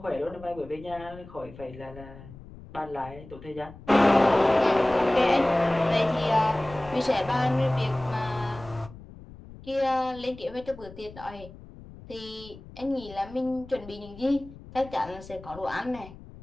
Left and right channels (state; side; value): noise; left; rumble, 18 dB below the sound